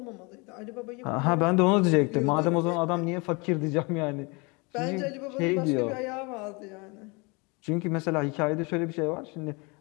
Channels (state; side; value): quieter; right; 28.9 dB